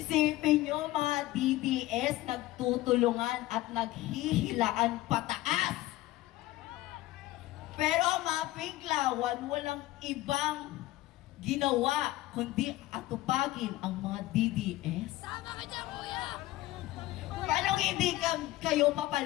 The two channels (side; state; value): right; quieter; 17.0 dB